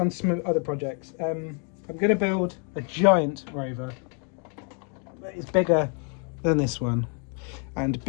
to some other projects. I'm going to build a giant rover that is bigger than this one, and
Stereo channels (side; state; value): right; quieter; 39.8 dB